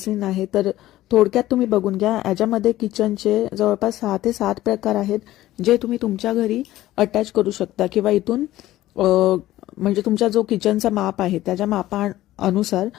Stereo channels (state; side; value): quieter; right; 15.2 dB